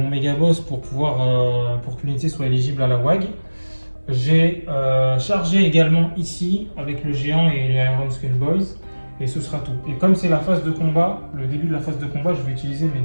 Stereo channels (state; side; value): inverted; both; correlation -1.00